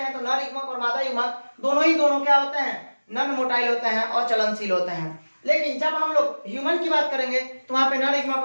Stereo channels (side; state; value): both; inverted; correlation -1.00